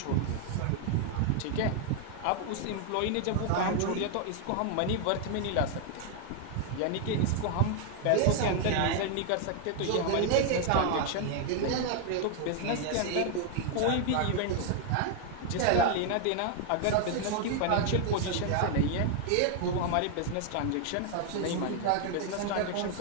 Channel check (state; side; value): different; both; correlation 0.00